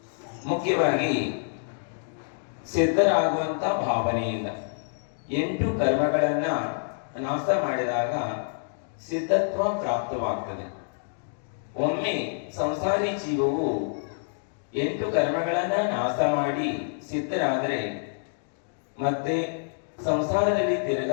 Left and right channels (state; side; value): silent; right; digital silence